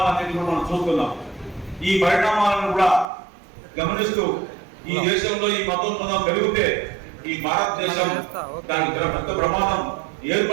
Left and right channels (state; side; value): drops out; left; at 3.1 s